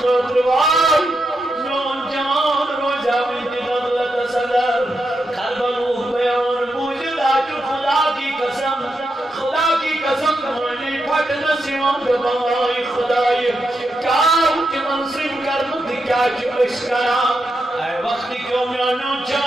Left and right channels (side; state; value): both; normal; correlation 0.85